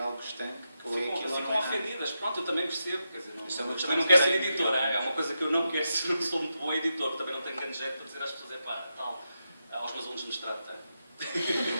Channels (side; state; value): both; inverted; correlation -0.87